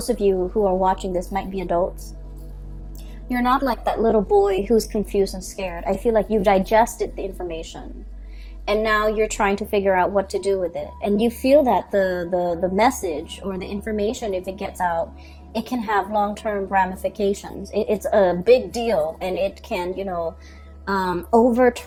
of you who are watching this might be adults, you're not like that little boy who's confused and scared. I feel like you've digested the information, and now you're trying to figure out what to do with it. And you feel that the message or the information, if it gets out, it can have long-term ramifications. It's a big deal, and it can, you know,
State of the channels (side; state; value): both; identical; correlation 1.00